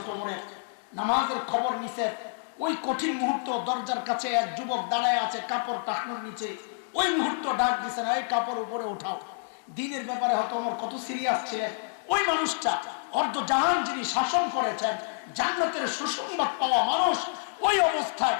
ওমরের, নামাজের খবর নিছে। ওই কঠিন মুহূর্ত দরজার কাছে এক যুবক দাঁড়ায় আছে কাপড় টাকনোর নিচে। ওই মুহূর্ত ডাক দিছেন, এই কাপড় উপরে উঠাও। দিনের ব্যাপারে হয়তো ওমর কত সিরিয়াস ছিলেন। ওই মানুষটা অর্ধ জাহান যিনি শাসন করেছেন, জান্নাতের সুসংবাদ পাওয়া মানুষ, ওই অবস্থায়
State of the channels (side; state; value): right; silent; digital silence